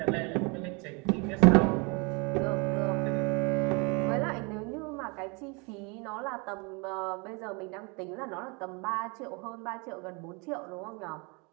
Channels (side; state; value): left; quieter; 30.6 dB